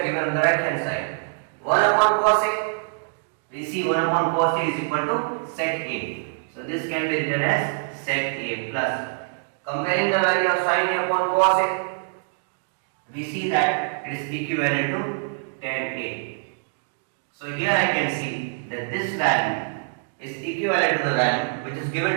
given on the right hand side. 1 upon cos a, we see 1 upon cos a is equal to sec a. So this can be written as sec a plus. Comparing the value of sin a upon cos a, we see that it is equivalent to tan a. So here I can see that this value is equivalent to the value which is given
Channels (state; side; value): silent; left; digital silence